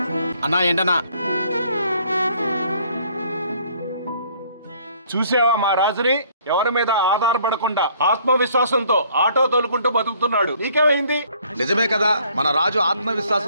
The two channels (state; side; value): inverted; both; correlation -0.61